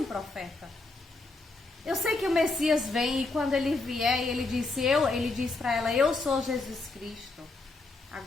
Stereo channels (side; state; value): right; quieter; 3.3 dB